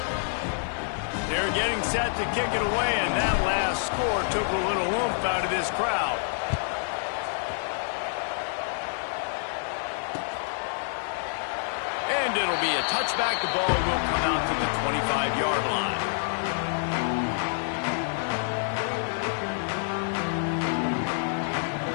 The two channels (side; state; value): right; silent; 60 dB below the other